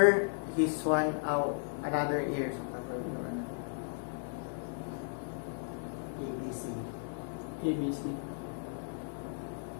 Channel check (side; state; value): right; silent; digital silence